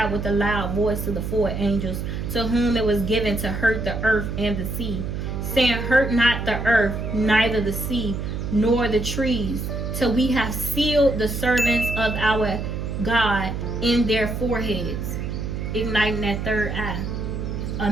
with a loud voice to the 4 angels, to whom it was given to hurt the earth and the sea, saying, Hurt not the earth, neither the sea, nor the trees, till we have sealed the servants of our God in their foreheads," igniting that third eye. A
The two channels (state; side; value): noise; right; hum, 4 dB below the sound